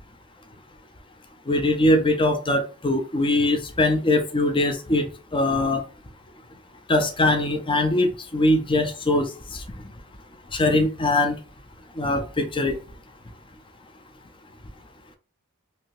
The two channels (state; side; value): normal; both; correlation 0.44